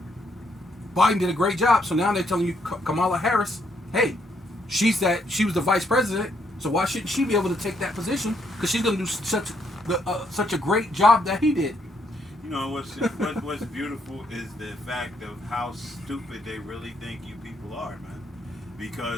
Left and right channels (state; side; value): normal; both; correlation 0.73